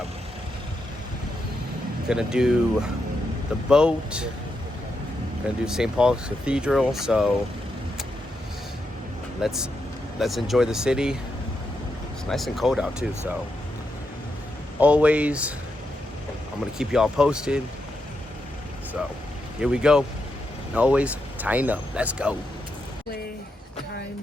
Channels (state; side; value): normal; both; correlation 0.84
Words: do the boat, gonna do St. Paul's Cathedral, so let's enjoy the city. It's nice and cold out too, so always, I'm gonna keep y'all posted. So here we go. And always tying up. Let's go.